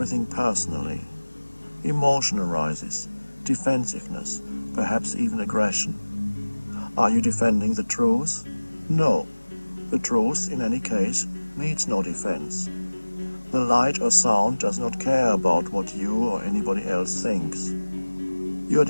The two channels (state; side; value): inverted; both; correlation -1.00